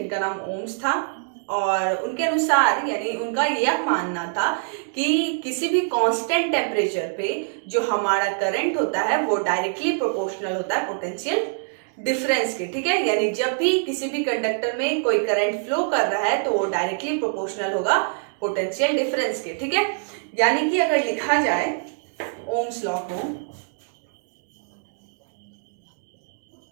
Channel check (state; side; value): silent; left; digital silence